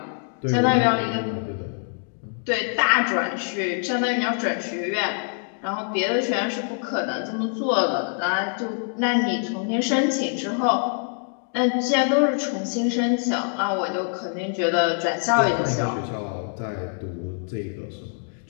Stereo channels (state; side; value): silent; right; 56 dB below the other